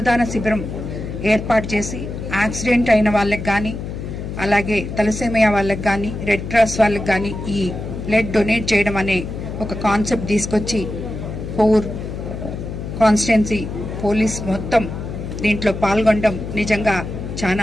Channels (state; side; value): noise; left; hum, 7 dB below the sound